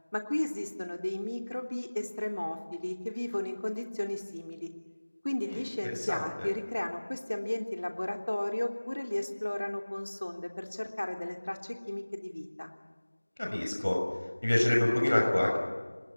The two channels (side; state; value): both; inverted; correlation -1.00